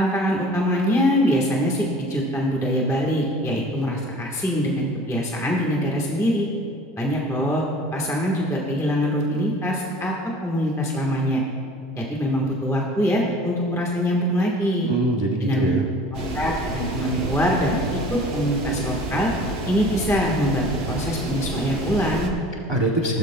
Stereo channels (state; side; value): normal; both; correlation 0.46